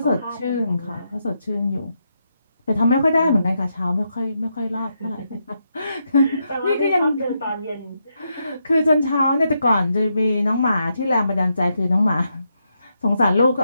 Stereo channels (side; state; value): both; inverted; correlation -0.82